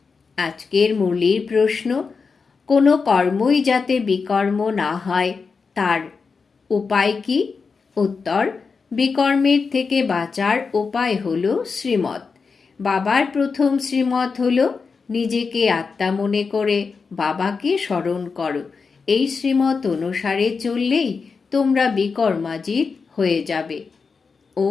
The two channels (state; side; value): quieter; right; 5.0 dB